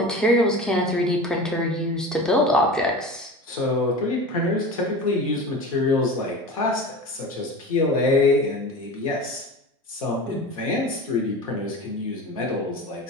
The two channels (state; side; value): normal; both; correlation 0.32